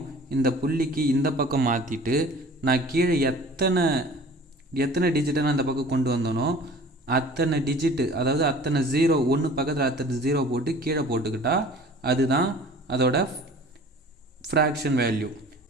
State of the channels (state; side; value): normal; both; correlation 0.45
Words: இந்த புள்ளிக்கு இந்த பக்கம் மாற்றிட்டு நான் கீழே எத்தனை டிஜிட்டை நான் இந்த பக்கம் கொண்டு வந்தனோ அத்தனை டிஜிட்டு, அதாவது அத்தனை 0 1 பக்கத்தில் அத்தனை 0 போட்டு கீழே போட்டுக்கிட்டா அதுதான் அதோட ஃப்ராக்ஷன் வேல்யூ.